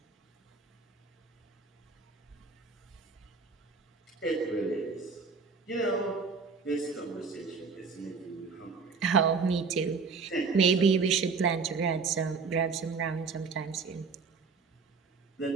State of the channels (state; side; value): quieter; left; 5.0 dB